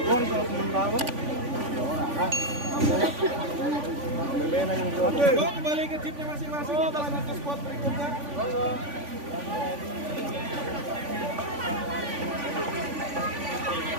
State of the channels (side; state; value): left; late; 3.5 ms